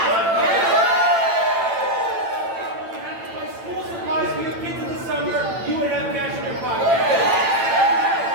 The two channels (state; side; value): late; left; 8.9 ms